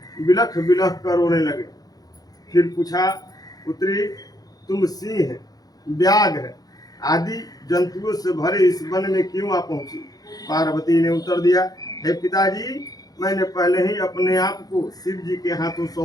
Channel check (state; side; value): late; right; 0.18 ms